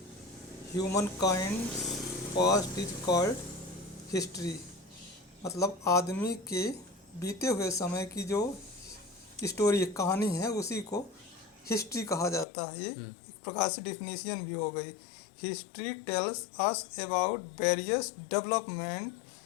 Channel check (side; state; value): right; drops out; at 12.5 s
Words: human kind past is called history. मतलब आदमी के बीते हुए समय की जो स्टोरी कहानी है उसी को हिस्ट्री कहा जाता है। ये एक प्रकार से डिफिनीशन भी हो गई। History tells us about various development